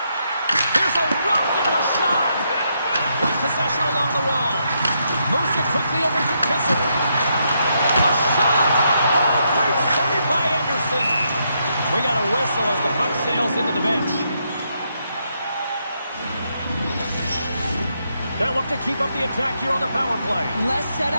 Here's a rocket of a shot. With possession along the wall. Moves it quickly over to Kessel. A shot! Oh, great save by Anderson. We got a whistle as the puck sails into the bench. They'll look to keep up the attack here on the power play. Less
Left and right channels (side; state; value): both; inverted; correlation -0.78